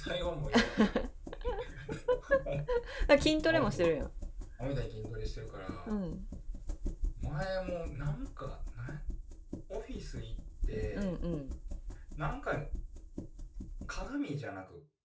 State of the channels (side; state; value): both; identical; correlation 1.00